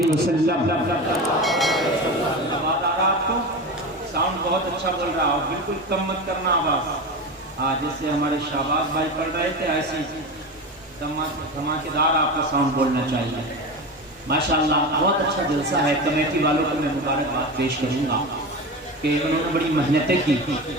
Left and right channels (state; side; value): normal; both; correlation 0.25